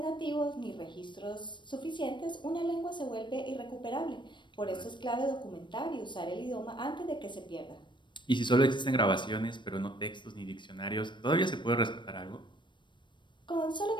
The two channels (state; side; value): late; right; 0.22 ms